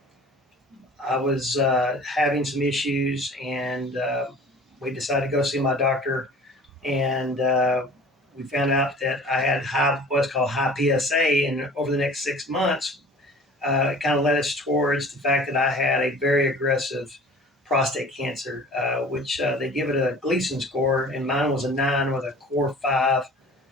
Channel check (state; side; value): normal; both; correlation 0.45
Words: I was having some issues, and we decided to go see my doctor, and we found out that I had what's called high PSA, and over the next 6 months, it kind of led us towards the fact that I had a very aggressive prostate cancer, which they give it a Gleason score, and mine was a 9 with a core 5